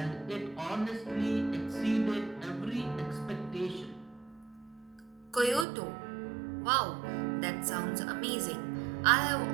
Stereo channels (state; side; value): drops out; left; at 5.7 s